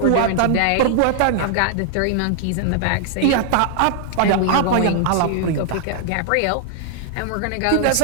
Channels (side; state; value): both; different; correlation -0.01